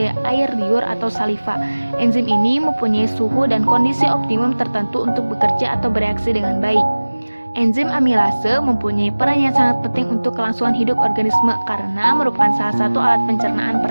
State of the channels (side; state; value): both; inverted; correlation -1.00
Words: air liur atau saliva. Enzim ini mempunyai suhu dan kondisi optimum tertentu untuk bekerja atau bereaksi dengan baik. Enzim amilase mempunyai peran yang sangat penting untuk kelangsungan hidup organisme karena merupakan salah satu alat pencernaan